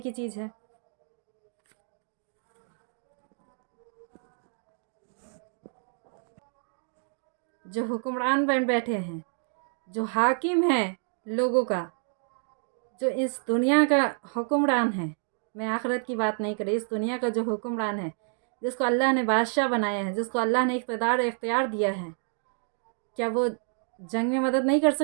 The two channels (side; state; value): left; silent; 59 dB below the other